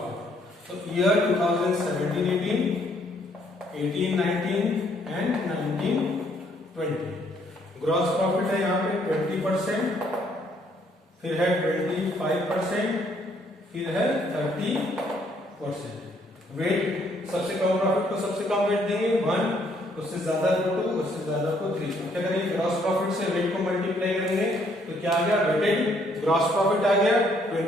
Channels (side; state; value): both; normal; correlation 0.67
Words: So year 2017-18, 18-19 and 19-20 gross profit है यहाँ पे 20%, फिर है 25%, फिर है 30%। वेट सबसे कम प्रॉफिट को सबसे कम वेट देंगे 1, उससे ज्यादा को 2, उससे ज्यादा को 3। क्या करेंगे ग्रॉस प्रॉफिट से वेट को मल्टीप्लाई करेंगे, तो क्या आ गया वेटेड ग्रॉस प्रॉफिट आ गया